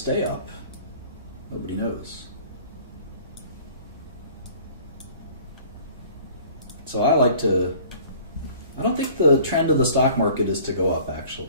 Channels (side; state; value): both; inverted; correlation -0.50